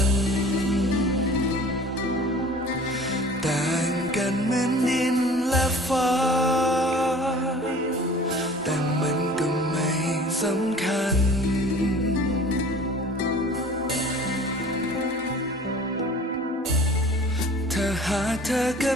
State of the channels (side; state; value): both; normal; correlation 0.45